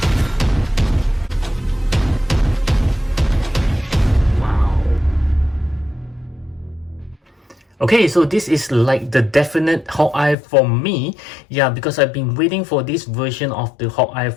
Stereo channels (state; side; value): drops out; right; at 10.4 s